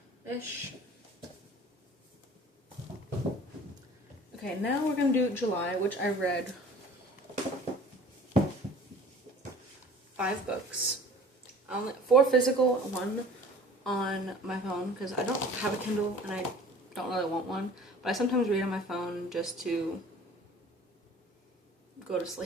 Okay, now we're going to do July, which I read 5 books. 4 physical, 1 on my phone, because I don't have a Kindle and I don't really want one, but I sometimes read on my phone just to go to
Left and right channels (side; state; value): both; normal; correlation 0.46